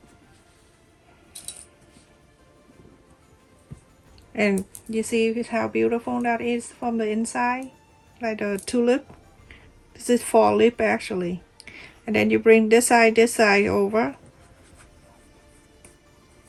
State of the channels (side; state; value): both; identical; correlation 1.00